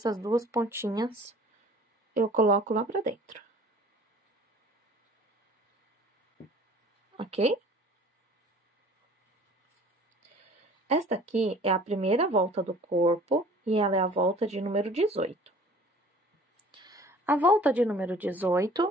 duas pontinhas eu coloco lá pra dentro. Ok? Esta aqui é a primeira volta do corpo e ela é a volta de número 18. A volta de número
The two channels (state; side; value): normal; both; correlation 0.49